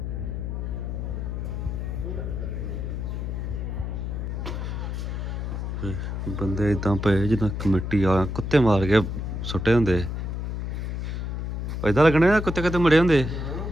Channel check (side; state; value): left; noise; hum, 3 dB below the sound